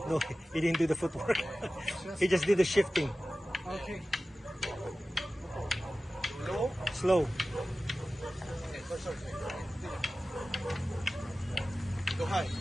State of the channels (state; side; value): normal; both; correlation 0.95